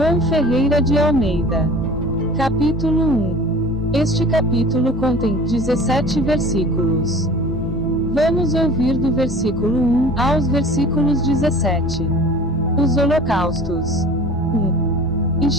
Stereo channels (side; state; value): both; normal; correlation 0.42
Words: Ferreira de Almeida. Capítulo 1. Este capítulo contém 17 versículos. Vamos ouvir do versículo 1 aos versículos 17. Os holocaustos. 1. E